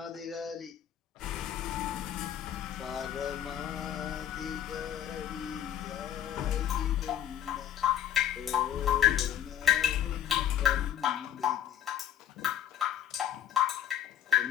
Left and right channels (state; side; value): quieter; right; 10.7 dB